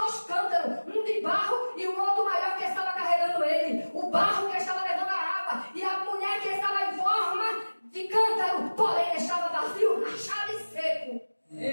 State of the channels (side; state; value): both; inverted; correlation -1.00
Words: cântaros. Um de barro e o outro maior que estava carregando ele. O barro que estava levando a água. E a mulher que estava em forma de cântaro. Porém estava vazio, rachado e seco.